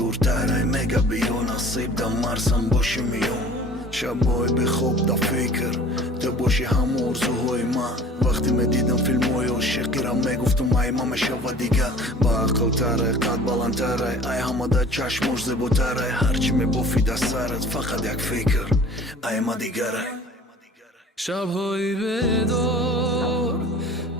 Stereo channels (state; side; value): normal; both; correlation 0.46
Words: ای میگه بیا نصیب ده مرسم باشی میام. شبای به خواب ده فکر تو باشی هم ارزوهای من، وقتی میدیدم فیلم های عاشقی را میگفتم ای ما میشوه دیگه با عقل تره قد بلندتره، ای همه ده چشمش زیباتره، هرچی میبافی ده سرت فقط یک فکر ای ما دیگره. شب‌های بیدار